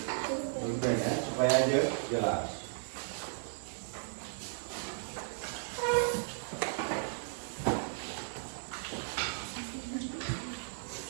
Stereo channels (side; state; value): left; silent; 54 dB below the other